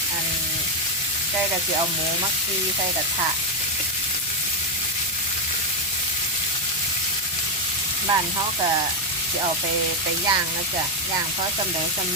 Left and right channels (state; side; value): normal; both; correlation 0.04